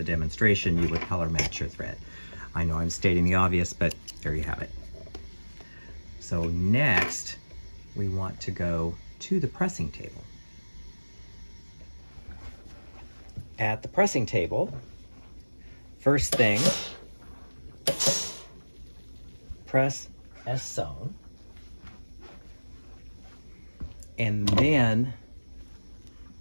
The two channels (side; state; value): both; inverted; correlation -1.00